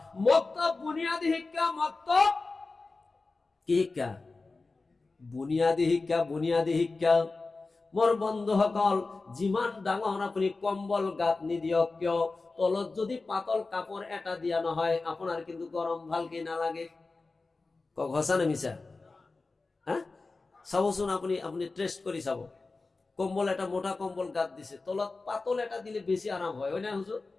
মক্তব বুনিয়াদী শিক্ষা। মক্তব কি শিক্ষা? বুনিয়াদী শিক্ষা। বুনিয়াদী শিক্ষা। মোর বন্ধুসকল, যিমান ডাঙৰ আপুনি কম্বল গাত নিদিয়ক কিয়, তলত যদি পাতল কাপড় এটা দিয়া নহয়, আপনার কিন্তু গরম ভালকে নালাগে। কক হসা না মিছা? হ্যাঁ, চাবচোন, আপনি টেস্ট কৰি চাব। কম্বল একটা মোটা কম্বল গাদ দিছে, তলত পাতল এটা দিলে বেশি আরাম হয়, ওই না হুজুর?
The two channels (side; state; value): right; quieter; 3.7 dB